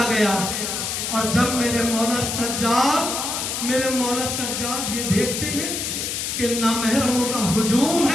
गया। और जब मेरे मौला सज्जाद ये देखते हैं कि नामहरमों का हुजूम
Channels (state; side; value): noise; left; hiss, 3 dB below the sound